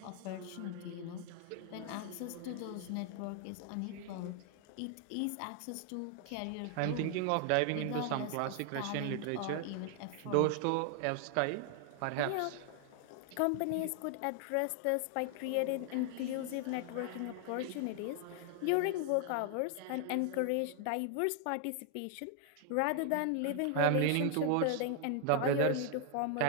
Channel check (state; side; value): different; both; correlation 0.00